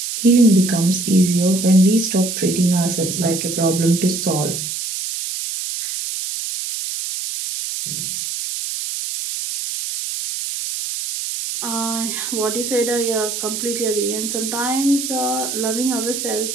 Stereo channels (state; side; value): noise; right; hiss, 4 dB below the sound